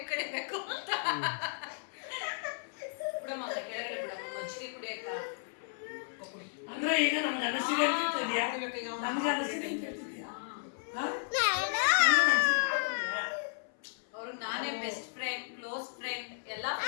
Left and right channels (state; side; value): silent; right; 55 dB below the other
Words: ಕಡಿಬೇಕು ಅಂತ. ಬಿಡಮ್ಮ ಕೆಳಗಡೆ ಬಿಡಮ್ಮ ಮಜ್ಜಿಗೆ ಕುಡಿಯಕ್ಕ. ಅಂದ್ರೆ ಈಗ ನಮ್ಗೆ ಅನಿಸಿದೆ ಅಂತ ಹೇಳ್ತಿದ್ಯಾ? ನಮ್ಗೆ ಅನಿಸಿದೆ ಅಂತ ಹೇಳ್ತಿದ್ಯಾ? ಅವ್ರಿಗೆ ನಾನೇ